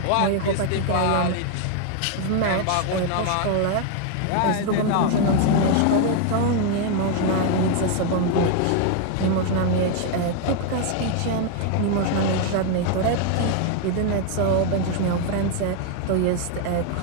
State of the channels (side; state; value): both; different; correlation 0.00